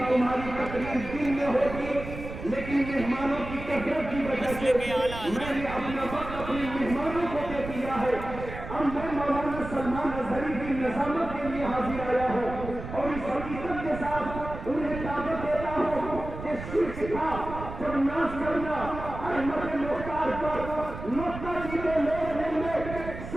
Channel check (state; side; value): noise; right; rumble, 10 dB below the sound